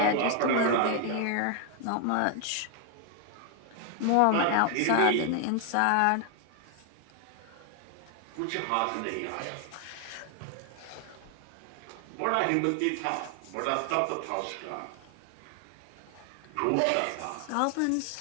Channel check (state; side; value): different; both; correlation 0.00